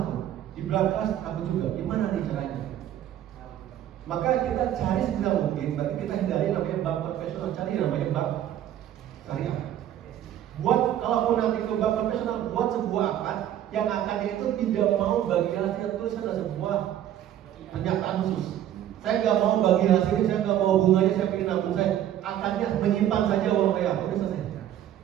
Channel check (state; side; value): quieter; left; 11.4 dB